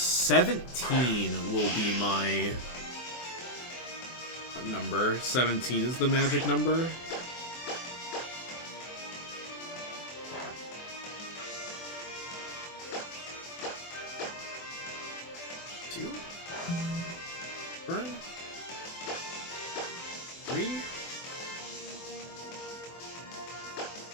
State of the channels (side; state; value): right; late; 24 ms